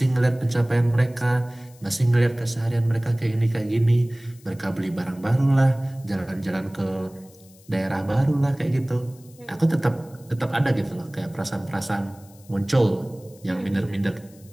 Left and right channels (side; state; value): left; noise; hiss, 26 dB below the sound